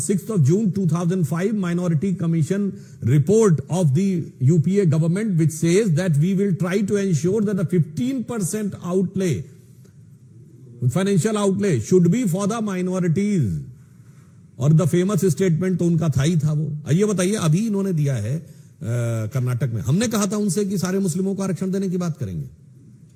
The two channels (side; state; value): both; identical; correlation 1.00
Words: of June 2005 Minority Commission report of the UPA government, which says that we will try to ensure that the 15% outlay, financial outlay, should be for the minorities. और the famous statement तो उनका था ही था वो। ये बताइए, अभी इन्होंने दिया है कर्नाटक में। हमने कहा था उनसे कि सारे मुस्लिमों को आरक्षण देने की बात करेंगे।